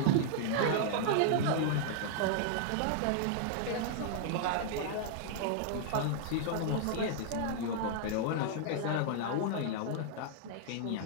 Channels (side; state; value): both; different; correlation -0.01